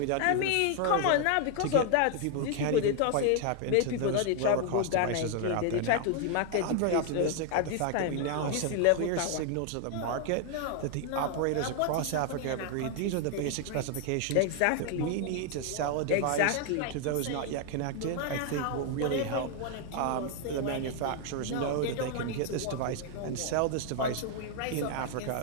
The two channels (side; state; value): both; different; correlation 0.00